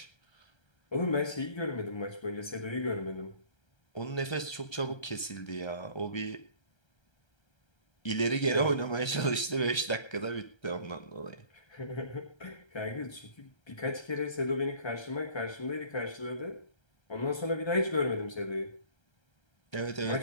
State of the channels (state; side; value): late; right; 1.3 ms